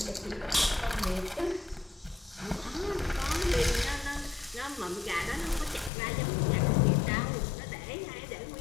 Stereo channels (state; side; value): drops out; right; at 5.9 s